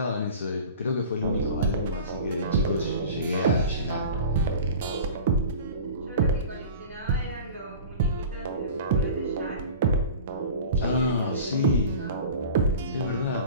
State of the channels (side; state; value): both; inverted; correlation -0.37